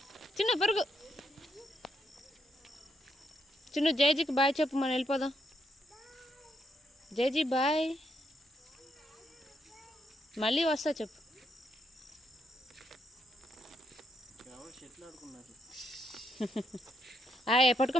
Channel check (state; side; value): normal; both; correlation 0.77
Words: చిన్న పరుగు. చిన్న జైజీకి బాయ్ చెప్పు, మనం వెళ్ళిపోదాం. జైజీ బాయ్, మళ్ళీ వస్తా చెప్పు. ఆయ్